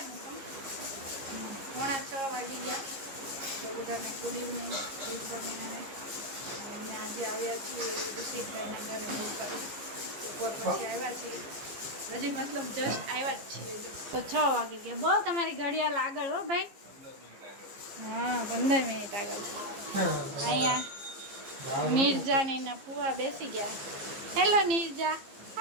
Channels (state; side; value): late; left; 15 ms